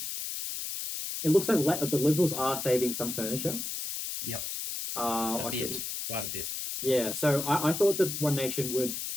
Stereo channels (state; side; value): noise; left; hiss, 5 dB below the sound